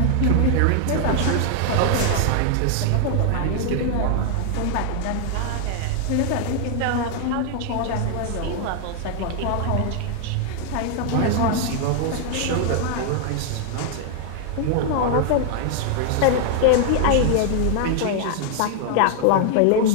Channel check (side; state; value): both; different; correlation 0.00